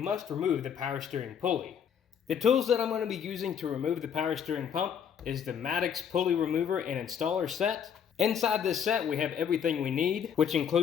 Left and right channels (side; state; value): right; quieter; 7.9 dB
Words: remove the power steering pulley. The tools that I'm going to be using to remove the power steering pump is the Maddox pulley remover and installer set. Inside this set, we have everything we need, which